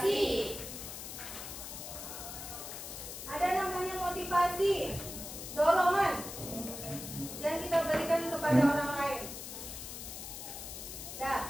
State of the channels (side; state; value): left; noise; hiss, 9 dB below the sound